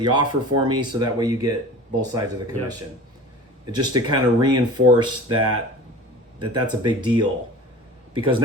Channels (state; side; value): normal; both; correlation 0.38